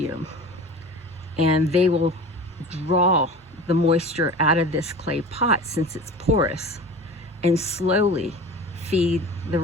and they will draw the moisture out of this clay pot, since it's porous, and slowly feed the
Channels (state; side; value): normal; both; correlation 0.36